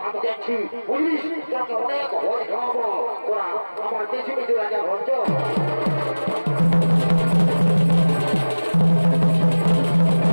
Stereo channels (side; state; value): both; inverted; correlation -1.00